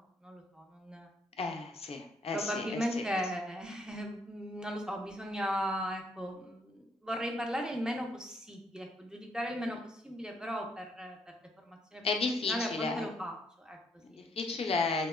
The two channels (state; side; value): normal; both; correlation 0.70